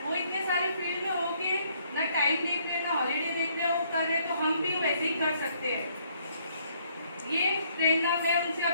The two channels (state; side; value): inverted; both; correlation -0.68